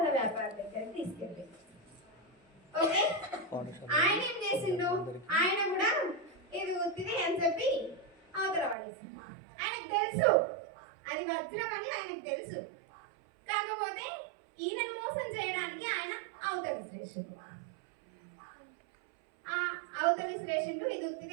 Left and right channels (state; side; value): drops out; left; at 8.8 s